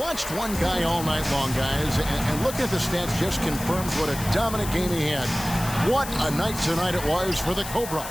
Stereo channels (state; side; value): noise; left; hiss, 10 dB below the sound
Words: one guy all night long, guys, and looking at the stats just confirms what a dominant game he had. What a night tonight it was for the Cobra.